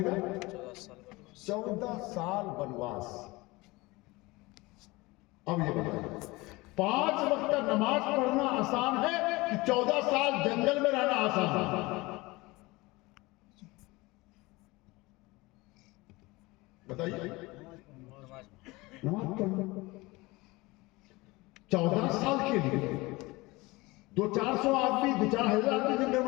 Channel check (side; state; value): right; quieter; 22.3 dB